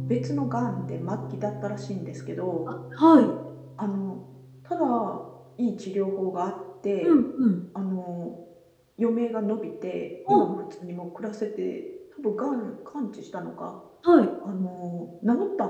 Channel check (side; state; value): both; identical; correlation 1.00